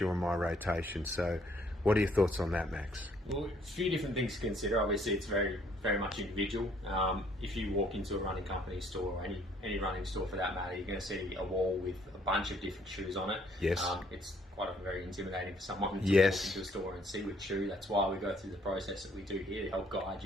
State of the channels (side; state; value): both; normal; correlation 0.64